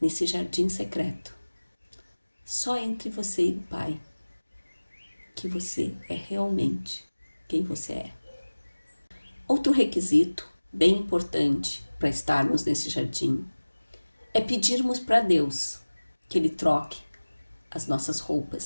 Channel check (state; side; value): inverted; both; correlation -1.00